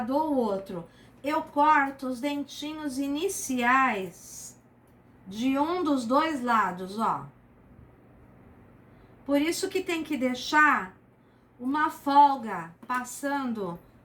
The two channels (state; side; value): identical; both; correlation 1.00